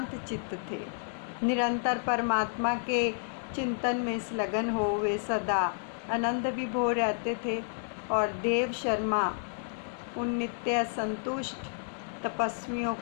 चित्त थे। निरंतर परमात्मा के चिंतन में संलग्न हो वे सदा आनंद विभोर रहते थे। और देव शर्मा उन नित्य संतुष्ट तपस्वियों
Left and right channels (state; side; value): silent; right; digital silence